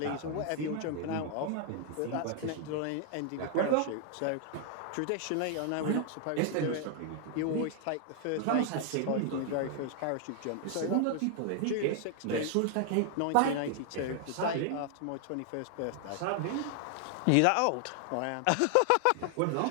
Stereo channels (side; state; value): both; different; correlation 0.00